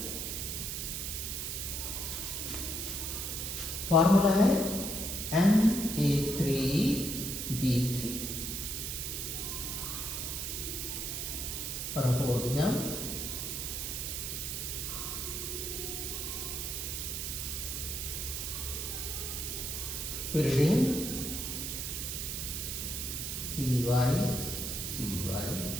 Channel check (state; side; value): noise; right; hiss, 3 dB below the sound